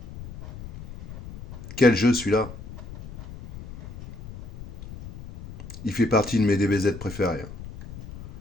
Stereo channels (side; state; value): left; noise; rumble, 14 dB below the sound